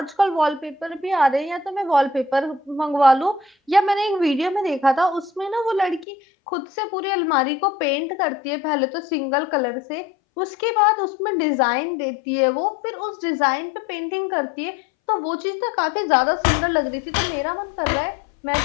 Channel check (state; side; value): drops out; right; at 6.1 s